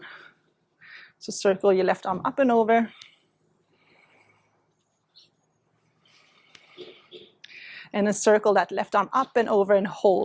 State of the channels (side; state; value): both; identical; correlation 1.00